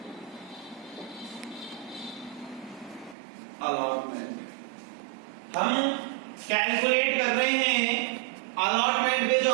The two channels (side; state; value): left; drops out; at 3.2 s